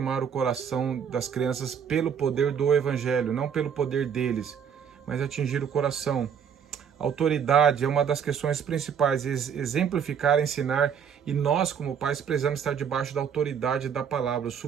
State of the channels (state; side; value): quieter; left; 7.6 dB